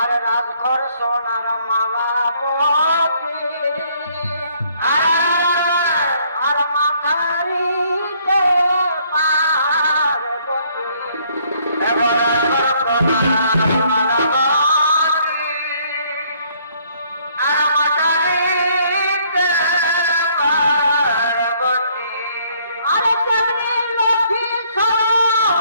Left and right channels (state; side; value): inverted; both; correlation -0.64